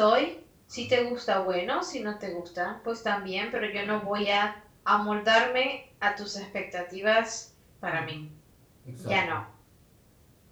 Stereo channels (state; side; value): identical; both; correlation 1.00